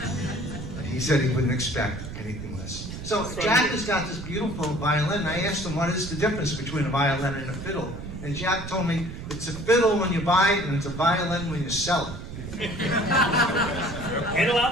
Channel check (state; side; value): noise; right; rumble, 9 dB below the sound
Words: He said he wouldn't expect anything less. So Jack has got this beautiful violin, and I asked him what is the difference between a violin and a fiddle. And Jack told me it's a fiddle when you buy it, and it's a violin when you sell it. And a